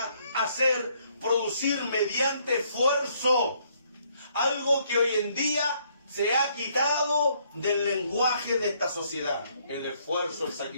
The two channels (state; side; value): inverted; both; correlation -0.68